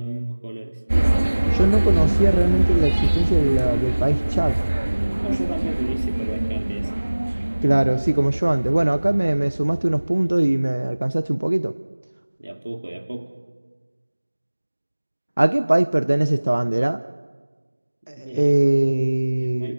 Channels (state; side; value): inverted; both; correlation -1.00